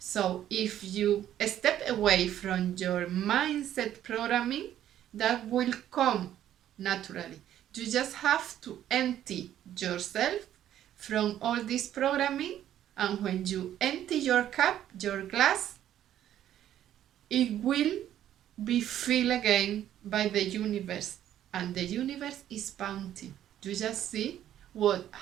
if you step away from your mindset programming, that will come naturally. You just have to empty yourself from all this programming, and when you empty your cup, your glass, it will be filled again by the universe, and the universe is bounty. You just see what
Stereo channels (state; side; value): quieter; left; 11.5 dB